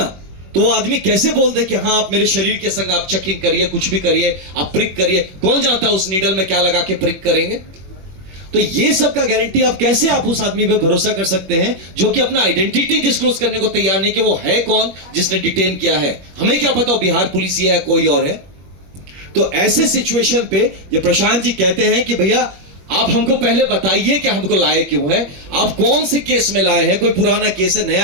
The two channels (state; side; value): late; left; 21 ms